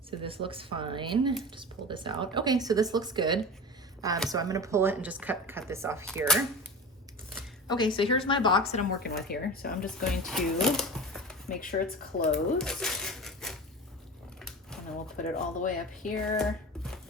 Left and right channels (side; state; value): both; normal; correlation 0.31